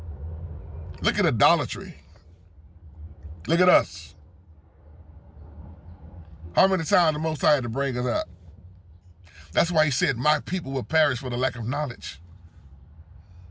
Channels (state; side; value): identical; both; correlation 1.00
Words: Look at idolatry. Look at us. How many times the Most High had to bring us up? That's why he said, my people will perish for the lack of knowledge.